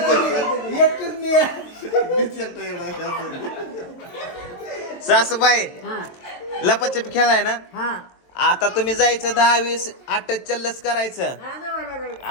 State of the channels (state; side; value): late; right; 22 ms